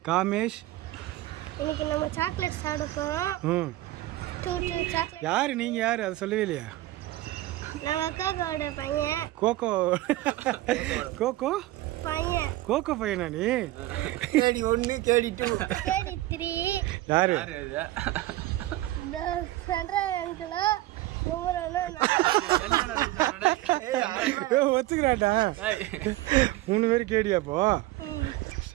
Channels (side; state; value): left; quieter; 17.0 dB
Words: காமேஷ். இன்னைக்கு நம்ம சாக்லேட் சாப்பிட போறோம். சாக்லேட். யாரு நீங்க? யாரு அதை சொல்லவே இல்லையா? நம்ம அக்காவோட பையன். கோகோ. கோகோ பையன். கோகோ பையனா நீ? கேடி 1 கேடி 2 கேடி 3. யாரு? இந்த சென்ட்ரல் அங்கிளா ஒத்துக்கிறாட்டா? 3 பேர் கேடியாப்போ.